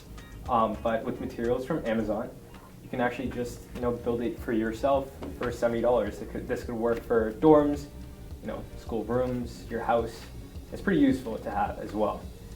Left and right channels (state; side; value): identical; both; correlation 1.00